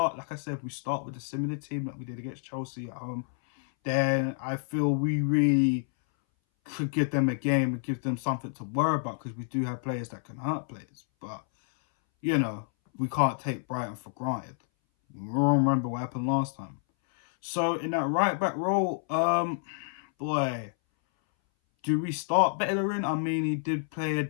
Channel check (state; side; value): silent; right; 59 dB below the other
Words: like I said, if we start with a similar team that we did against Chelsea at home, then I feel we really could give them a game and give them something to worry about because we do have players that can hurt players. But, you know, we can't take Brighton for granted. We all remember what happened last time. So in that right back role, boy, do we start Bellerin? I mean, he did play a